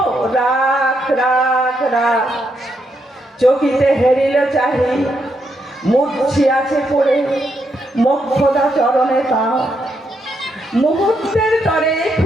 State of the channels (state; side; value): normal; both; correlation 0.79